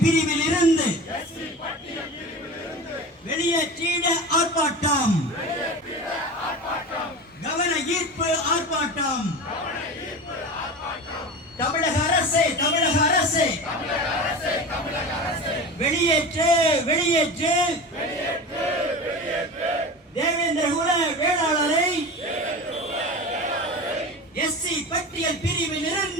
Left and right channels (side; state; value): both; normal; correlation 0.30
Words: பிரிவில் இருந்து வெளியேற்றிட ஆர்ப்பாட்டம், கவன ஈர்ப்பு ஆர்ப்பாட்டம். தமிழக அரசே, தமிழக அரசே, வெளியேற்று, வெளியேற்று, தேவேந்திர குல வேளாளரை எஸ்சி பட்டியல் பிரிவில்